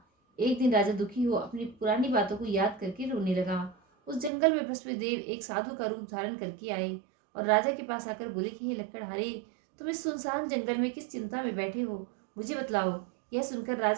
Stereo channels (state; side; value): drops out; left; at 4.3 s